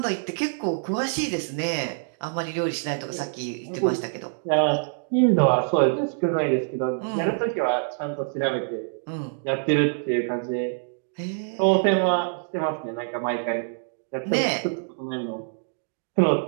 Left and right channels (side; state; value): left; silent; digital silence